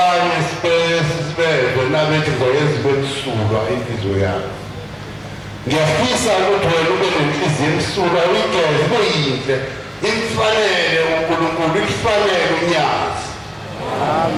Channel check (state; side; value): identical; both; correlation 1.00